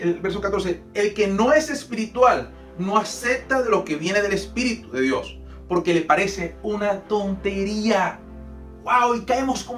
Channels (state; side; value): identical; both; correlation 1.00